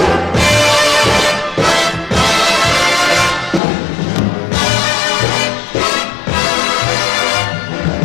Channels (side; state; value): right; drops out; at 3.6 s